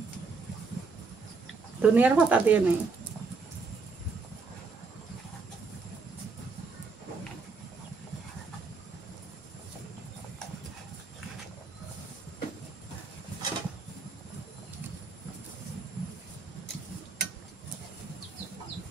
দুনিয়ার ভাতা দিয়ে নেই।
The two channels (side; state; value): left; quieter; 4.5 dB